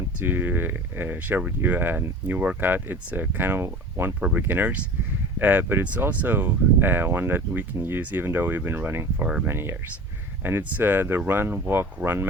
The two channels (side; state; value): both; normal; correlation 0.38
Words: to share with you a new workout. It's a kind of one for beginners, but it's also one that we can use even though we've been running for many years. And it's the run, walk, run